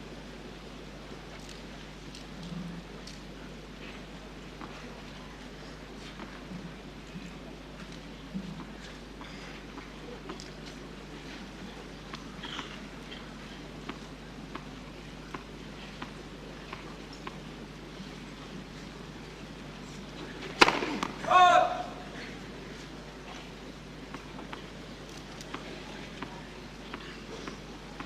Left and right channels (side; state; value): both; identical; correlation 1.00